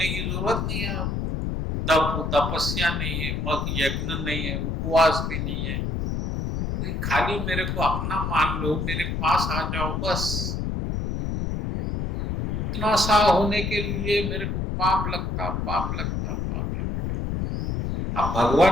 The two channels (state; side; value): noise; left; rumble, 2 dB below the sound